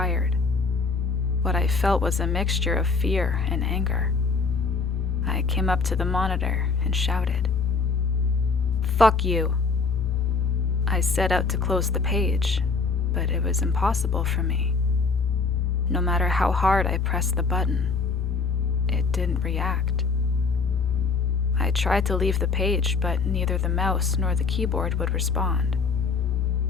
What I felt was a mixture of fear and anger. I came up to the monitor and shouted, "Fuck you!" I set out to close the page, but it was impossible for me. No matter how hard I pressed the button, it didn't react. I tried to leave the page, but neither the mouse nor the keyboard would respond.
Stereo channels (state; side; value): quieter; right; 4.7 dB